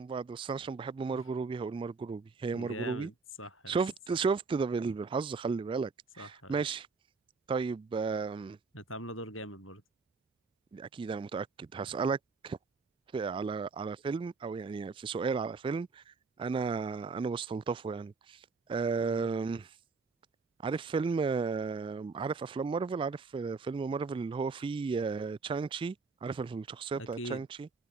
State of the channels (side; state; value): left; quieter; 4.4 dB